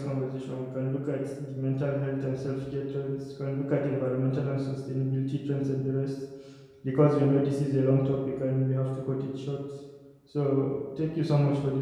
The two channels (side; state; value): both; identical; correlation 1.00